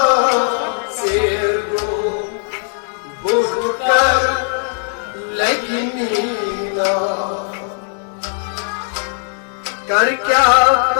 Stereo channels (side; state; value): right; silent; 58 dB below the other